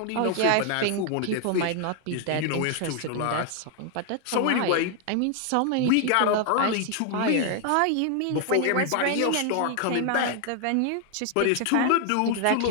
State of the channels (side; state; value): both; different; correlation 0.00